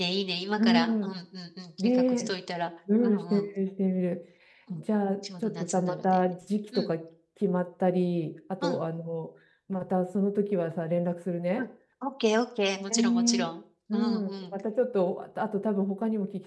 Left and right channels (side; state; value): both; identical; correlation 1.00